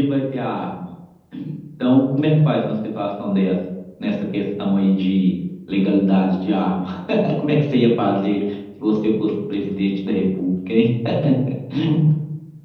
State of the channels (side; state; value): both; identical; correlation 1.00